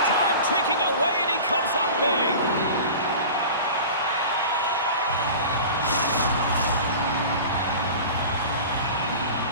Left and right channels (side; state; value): both; inverted; correlation -0.36